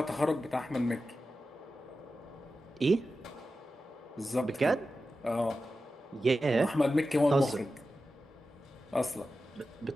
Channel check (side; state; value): both; normal; correlation 0.92